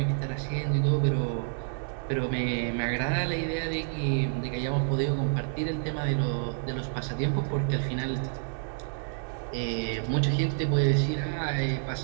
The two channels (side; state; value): left; silent; digital silence